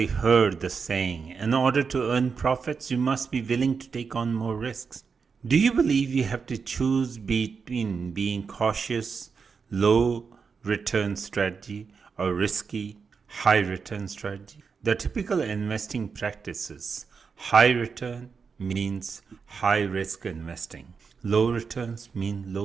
heard the saying, in order to earn profits, you must be willing to take on more risks. Do you believe you have to choose between being cautious, low return strategy or risky, high return strategy? The typical investing practices: high return means high risk investing. Low returns mean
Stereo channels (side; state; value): left; quieter; 5.5 dB